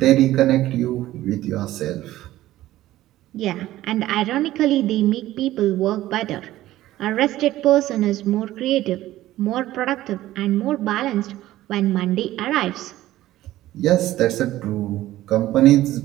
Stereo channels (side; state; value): left; quieter; 15.1 dB